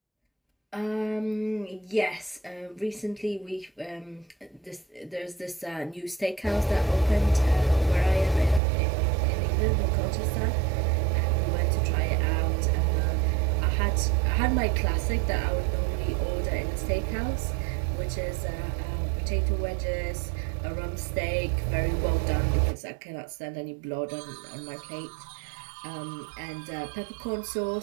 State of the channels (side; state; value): left; drops out; at 8.6 s